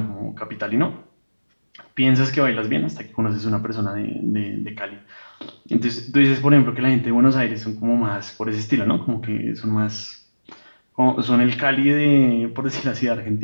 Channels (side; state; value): both; inverted; correlation -1.00